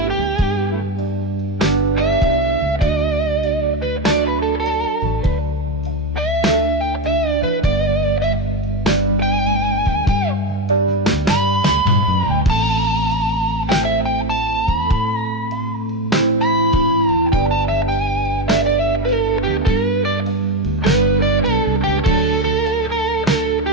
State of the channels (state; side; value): normal; both; correlation 0.15